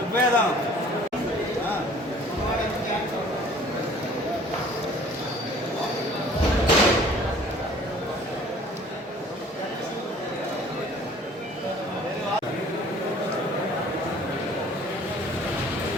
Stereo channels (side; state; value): both; normal; correlation 0.52